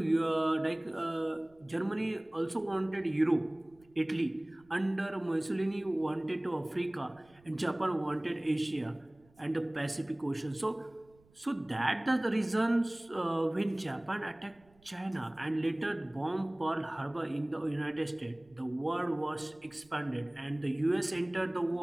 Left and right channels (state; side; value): noise; right; rumble, 30 dB below the sound